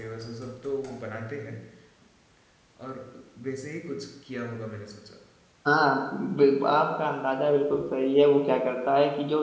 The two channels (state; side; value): identical; both; correlation 1.00